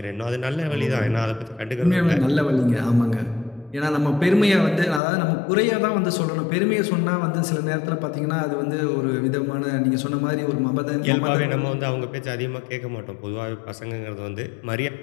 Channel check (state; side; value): drops out; right; at 5.0 s